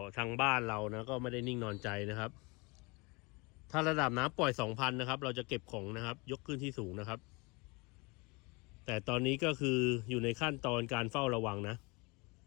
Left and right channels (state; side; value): quieter; right; 27.4 dB